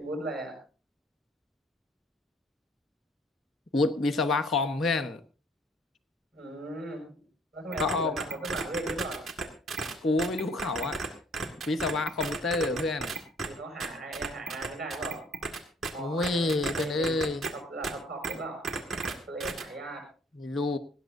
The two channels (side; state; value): both; normal; correlation 0.58